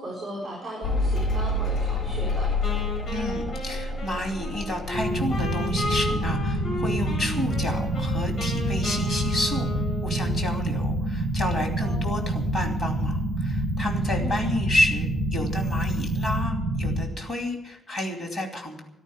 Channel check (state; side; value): normal; both; correlation 0.63